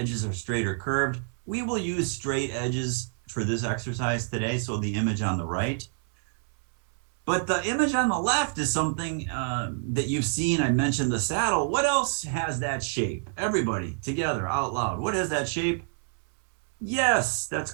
are straight or curved. We will use straight edges for this exercise today, so the image on the right. But the image on the left is something that you've seen. I mentioned the saddle. What else has that shape? Everybody together out loud. What has that shape? Yes, that's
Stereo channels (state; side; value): silent; left; 60 dB below the other